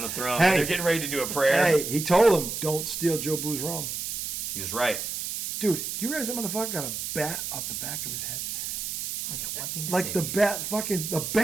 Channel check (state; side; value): noise; right; hiss, 4 dB below the sound